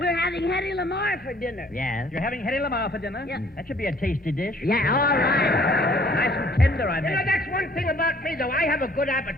having Hetty Lamar for dinner. Yes. You're having Hetty Lamar for dinner? Yeah. That should be a tasty dish. Yeah, all right. Nice and tender, I You know, bet. that's one thing about me, though. I have a good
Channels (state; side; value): normal; both; correlation 0.58